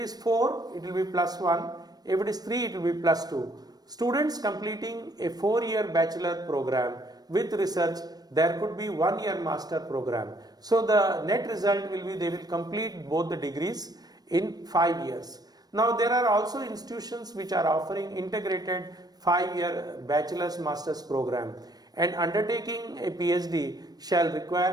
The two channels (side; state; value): left; late; 0.19 ms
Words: 4, it will be +1. If it is 3, it will be +2. Students completing a 4-year bachelor program with research, there could be 1-year master program. So the net result will be they will complete both the degrees in 5 years. Now there are also institutions which are offering integrated 5-year bachelor's master's program, and undertaking a PhD shall